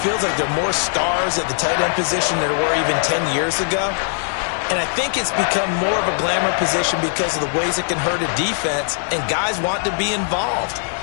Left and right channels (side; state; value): right; silent; 66 dB below the other